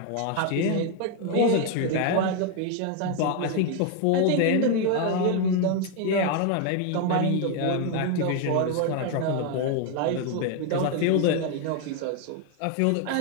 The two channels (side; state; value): both; different; correlation 0.01